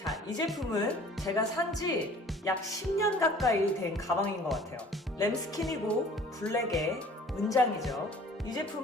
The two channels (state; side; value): normal; both; correlation 0.50